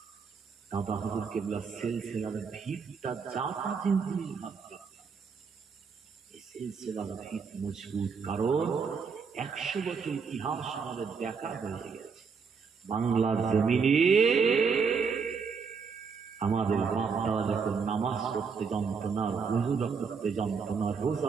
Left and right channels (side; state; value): left; quieter; 5.6 dB